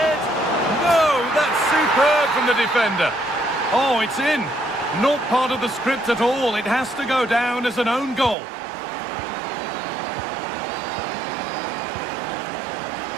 From the defender. Oh, it's in. Not part of the script at all. It has to go down as an own goal.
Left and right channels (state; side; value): drops out; left; at 8.3 s